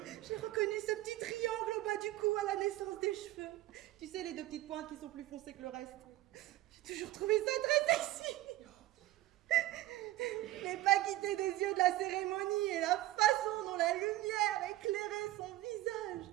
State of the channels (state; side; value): quieter; left; 16.2 dB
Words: J'ai reconnu ce petit triangle au bas du cou à la naissance des cheveux. Tu sais, les deux petites pointes qui sont plus foncées que le reste. J'ai toujours trouvé ça très sexy. Je n'ai pas quitté des yeux de la cérémonie et la façon dont la lumière éclairait son visage.